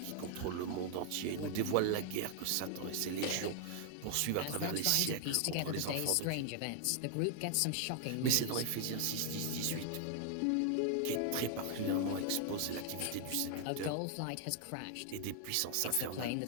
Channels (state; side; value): different; both; correlation 0.00